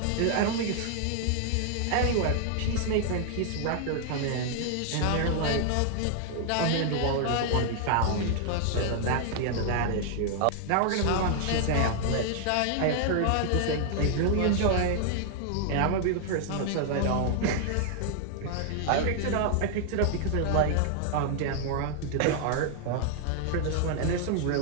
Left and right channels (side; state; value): both; different; correlation 0.00